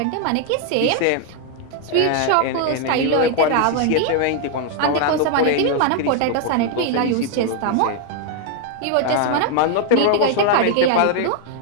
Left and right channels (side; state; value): both; different; correlation 0.00